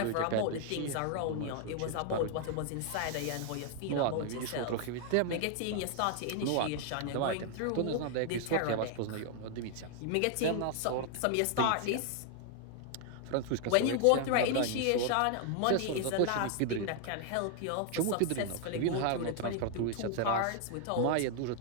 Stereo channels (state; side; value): different; both; correlation 0.00